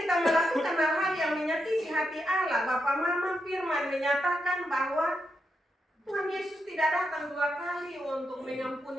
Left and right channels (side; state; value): both; normal; correlation 0.84